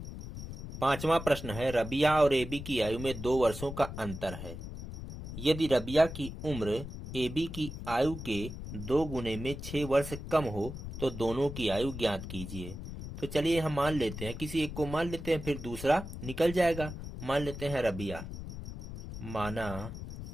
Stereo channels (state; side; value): noise; left; rumble, 9 dB below the sound